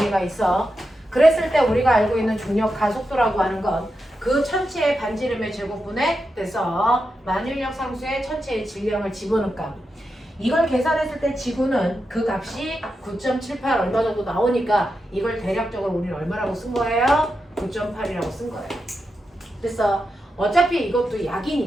있어. 그랬을 때 우리가 알고 있는 중력 가속도라고 하는 건 그 천체의 반지름의 제곱분에 돼서 만유인력 상수의 천체의 질량을 집어넣은 값. 이걸 계산했을 때 지구는 그 값이 9.78 얼마 정도 나오니까 이걸 대략적으로 우리는 얼마라고 쓴 거예요? 9.8이라고 쓴 거예요. 그래서 어차피 이것도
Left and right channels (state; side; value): normal; both; correlation 0.88